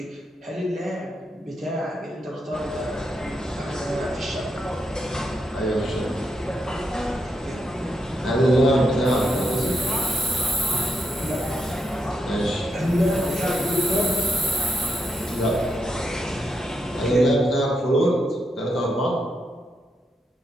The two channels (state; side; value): normal; both; correlation 0.82